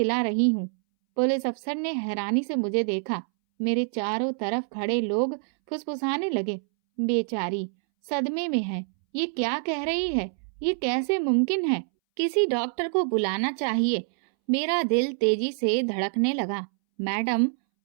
रही हूँ। पुलिस अफसर ने हैरानी से मुझे देखा। मेरे चारों तरफ खड़े लोग फुसफुसाने लगे। बेचारी सदमे में है। ये क्या कह रही है? ये कैसे मुमकिन है? किसी डॉक्टर को बुलाना चाहिए। मेरा दिल तेजी से धड़कने लगा। मैडम,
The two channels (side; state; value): left; silent; 61 dB below the other